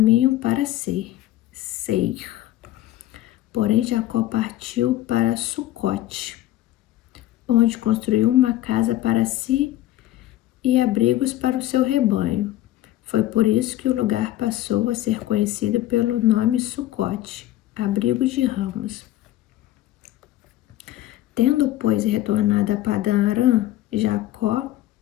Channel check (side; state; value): right; quieter; 14.4 dB